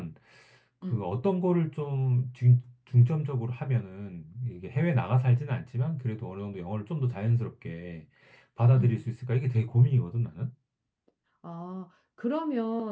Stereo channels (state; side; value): identical; both; correlation 1.00